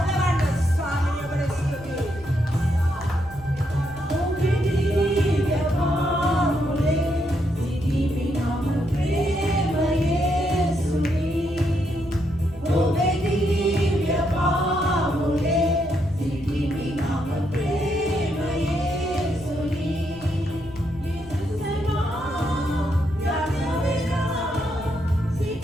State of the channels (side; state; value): left; noise; rumble, 18 dB below the sound